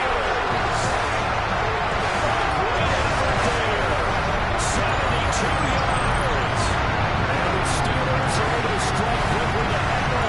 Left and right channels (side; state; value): both; identical; correlation 1.00